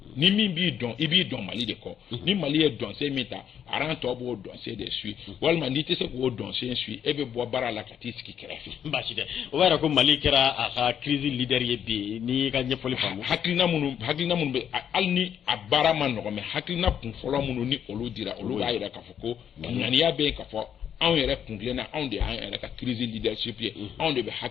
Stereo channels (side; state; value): right; quieter; 8.9 dB